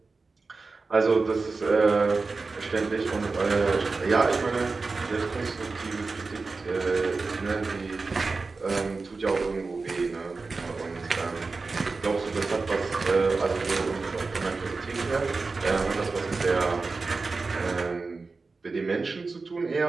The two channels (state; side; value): quieter; left; 4.0 dB